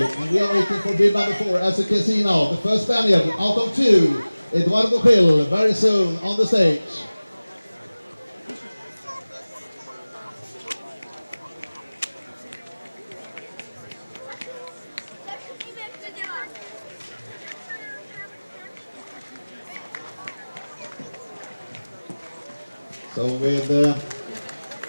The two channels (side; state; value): both; inverted; correlation -0.99